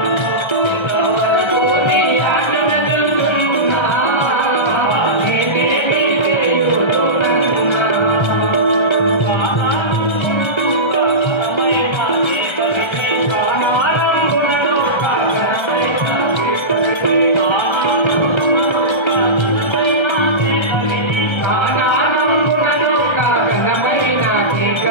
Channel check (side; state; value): right; late; 1.3 ms